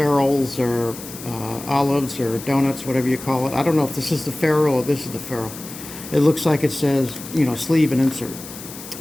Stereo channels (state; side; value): noise; left; hiss, 13 dB below the sound